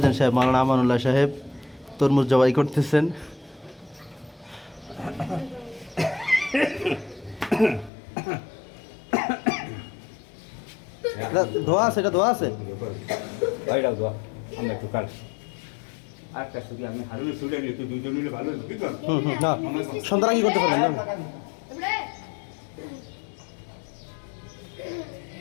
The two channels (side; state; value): right; drops out; at 7.9 s